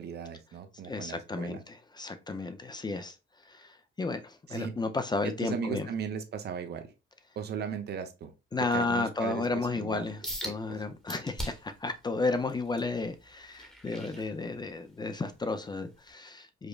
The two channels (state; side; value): normal; both; correlation 0.57